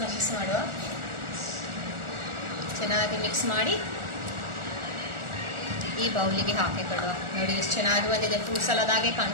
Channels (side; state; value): left; late; 1.4 ms